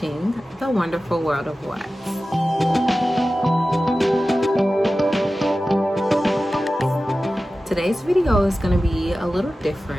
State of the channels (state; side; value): normal; both; correlation 0.95